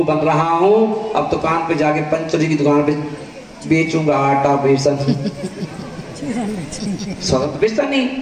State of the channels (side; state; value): both; identical; correlation 1.00